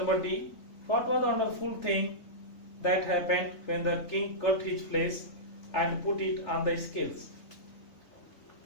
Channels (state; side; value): late; right; 3.6 ms